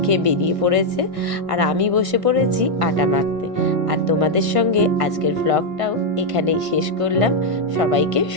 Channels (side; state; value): left; late; 1.5 ms